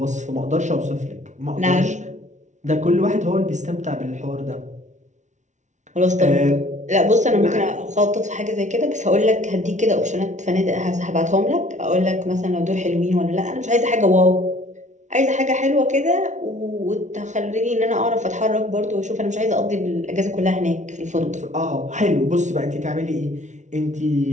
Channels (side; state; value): left; late; 0.35 ms